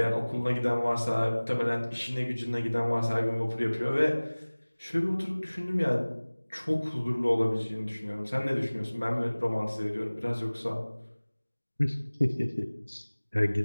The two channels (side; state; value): both; inverted; correlation -1.00